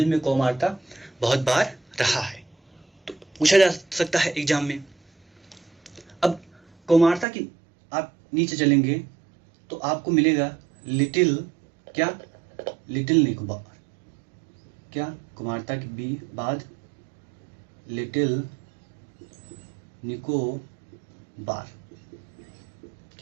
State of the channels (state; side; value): drops out; left; at 7.2 s